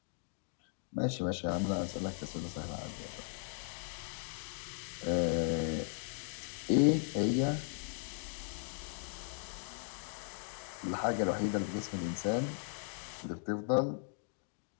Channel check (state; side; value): silent; right; digital silence